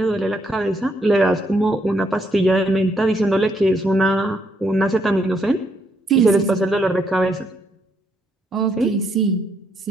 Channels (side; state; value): both; normal; correlation 0.74